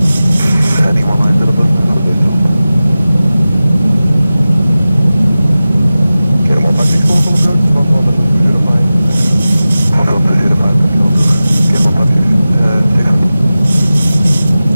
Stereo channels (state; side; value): inverted; both; correlation -0.96